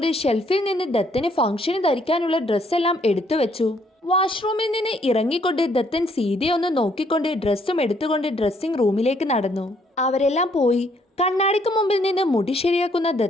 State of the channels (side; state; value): both; normal; correlation 0.68